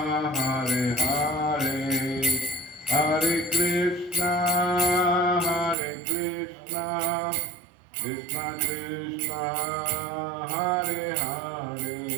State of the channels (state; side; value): drops out; left; at 5.8 s